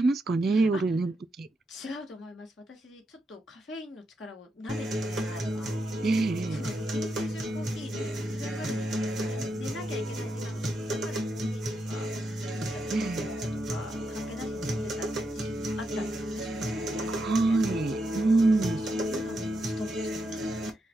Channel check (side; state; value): both; normal; correlation 0.84